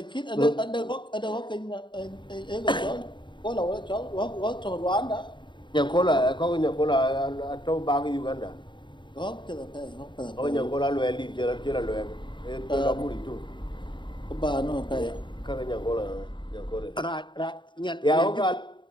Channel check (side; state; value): right; late; 0.23 ms